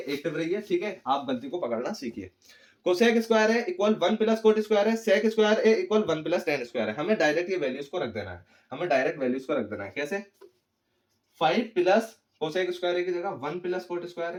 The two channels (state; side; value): identical; both; correlation 1.00